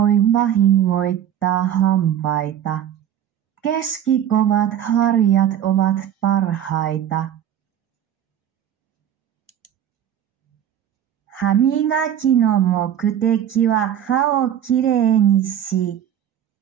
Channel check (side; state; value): left; quieter; 10.2 dB